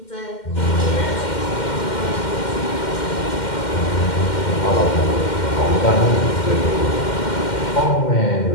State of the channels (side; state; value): right; late; 2.1 ms